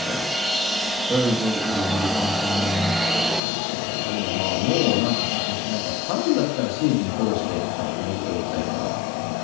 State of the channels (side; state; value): right; drops out; at 3.4 s